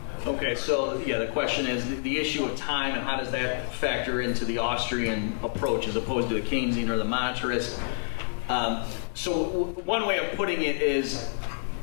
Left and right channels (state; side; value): silent; right; digital silence